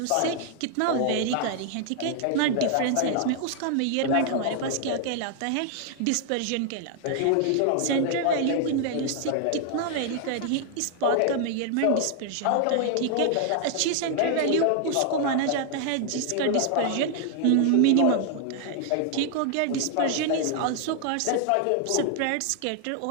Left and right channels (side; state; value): both; different; correlation 0.00